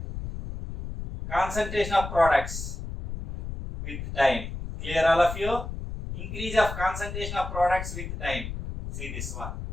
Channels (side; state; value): left; noise; rumble, 7 dB below the sound